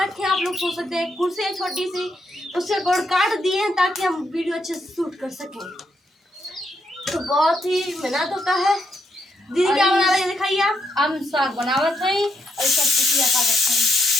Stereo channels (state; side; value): normal; both; correlation 0.79